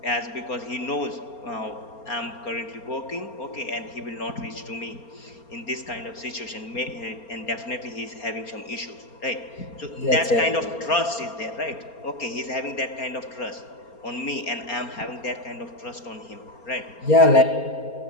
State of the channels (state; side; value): late; right; 4.3 ms